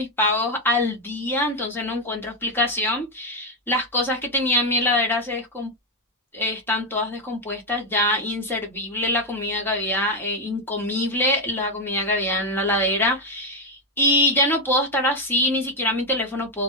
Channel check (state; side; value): normal; both; correlation 0.06